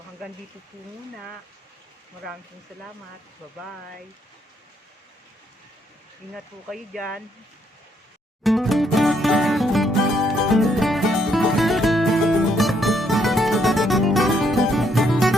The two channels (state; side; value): normal; both; correlation 0.72